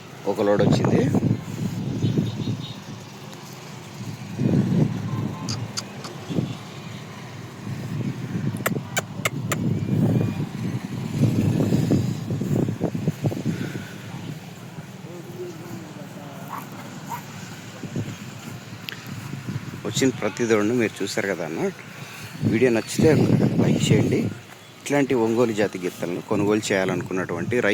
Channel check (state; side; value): identical; both; correlation 1.00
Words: ఒక లోడ్ వచ్చింది. వచ్చిన ప్రతి దూడను మీరు చూసారు కదా అన్న. వీడియో నచ్చితే లైక్ చేయండి. ఇట్లాంటి ఒంగోలు జాతి గిత్తలను కొనుగోలు చేయాలనుకున్నటువంటి